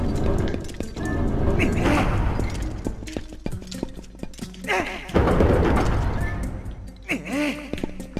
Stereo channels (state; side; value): identical; both; correlation 1.00